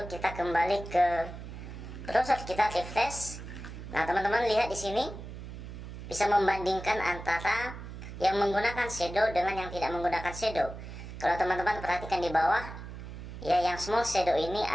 kita kembali ke browser kita, refresh. Nah, teman-teman lihat di sini bisa membandingkan antara yang menggunakan shadow dengan yang tidak menggunakan shadow. Kalau teman-teman perhatikan di bawah, ya, yang small shadow ini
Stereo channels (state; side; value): noise; right; hum, 11 dB below the sound